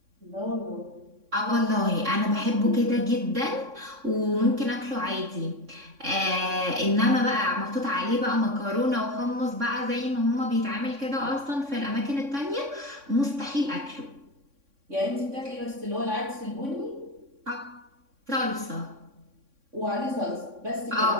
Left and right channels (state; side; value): late; left; 3.6 ms